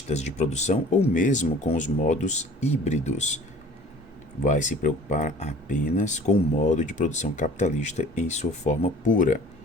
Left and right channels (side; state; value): both; normal; correlation 0.47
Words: de produção ou mesmo com os modos híbridos. Vai se preocupar apenas com o modo de produção capitalista em sua forma pura.